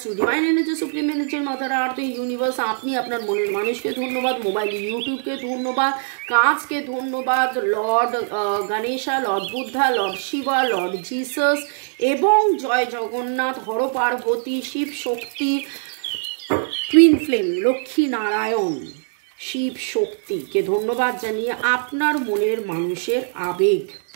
to divine energy, supreme energy, mother earth, universe. আপনি আপনার মনের মানুষকে ধন্যবাদ, মোবাইল ইউটিউবকে ধন্যবাদ, কাজকে ধন্যবাদ, lord Ganesha, lord Buddha, lord Shiva, lord Jesus এবং জয় জগন্নাথ, হর পার্বতী, শিব শক্তি, টুইন ফ্লেম, লক্ষ্মী নারায়ণ, শিব শক্তিকে ধন্যবাদ জানিয়ে আপনার মনের মানুষের আবেগ,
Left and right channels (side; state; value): left; silent; digital silence